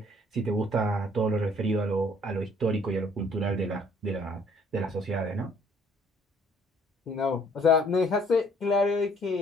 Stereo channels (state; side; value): normal; both; correlation 0.60